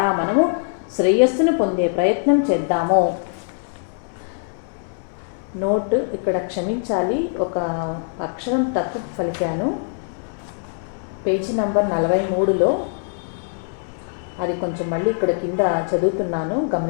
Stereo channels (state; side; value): silent; right; 64 dB below the other